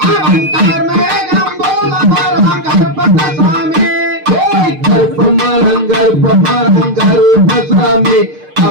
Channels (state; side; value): late; left; 6.6 ms